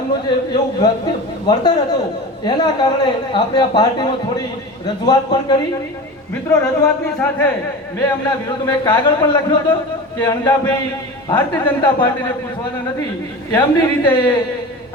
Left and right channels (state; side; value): normal; both; correlation 0.31